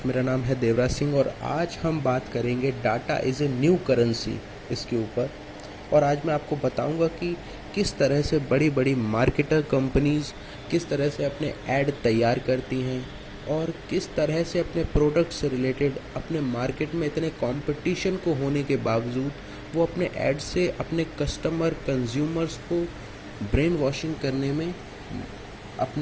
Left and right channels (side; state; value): both; identical; correlation 1.00